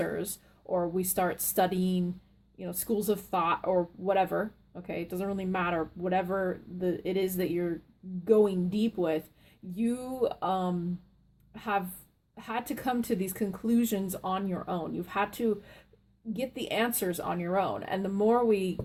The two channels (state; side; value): identical; both; correlation 1.00